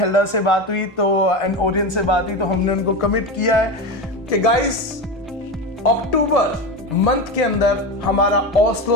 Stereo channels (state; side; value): normal; both; correlation 0.21